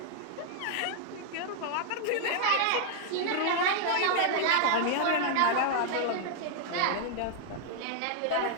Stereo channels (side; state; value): both; different; correlation 0.00